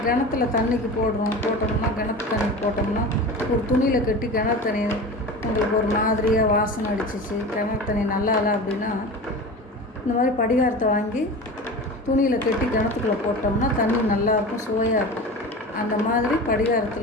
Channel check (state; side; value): normal; both; correlation 0.32